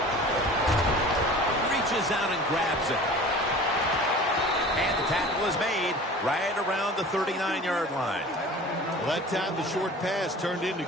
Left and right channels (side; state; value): both; normal; correlation 0.41